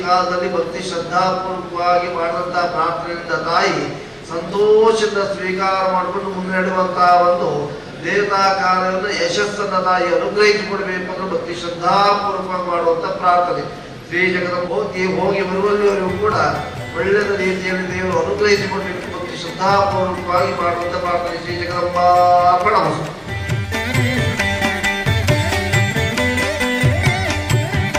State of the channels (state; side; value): identical; both; correlation 1.00